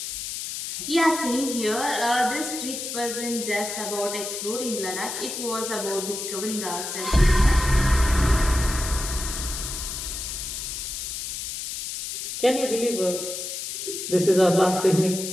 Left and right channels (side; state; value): left; noise; hiss, 6 dB below the sound